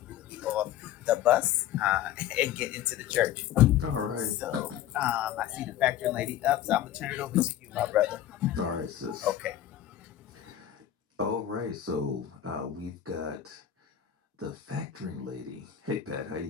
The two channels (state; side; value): quieter; right; 11.2 dB